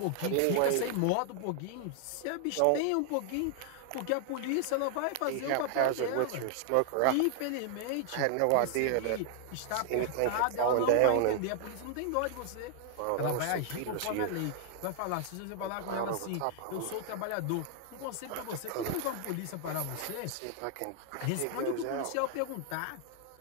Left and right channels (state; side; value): different; both; correlation 0.00